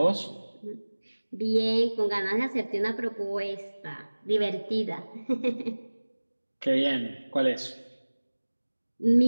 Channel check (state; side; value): inverted; both; correlation -1.00